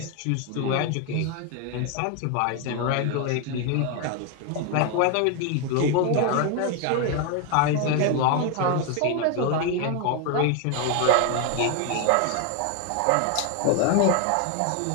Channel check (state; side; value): different; both; correlation 0.01